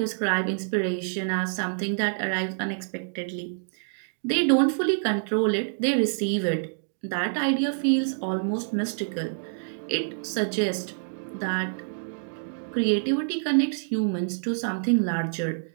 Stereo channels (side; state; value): left; silent; digital silence